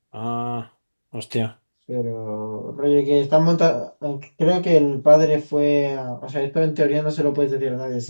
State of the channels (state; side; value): inverted; both; correlation -1.00